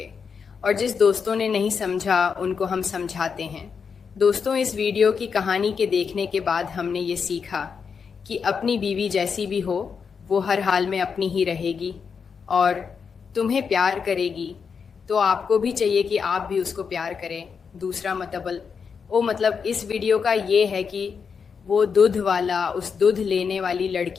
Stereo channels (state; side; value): quieter; right; 6.0 dB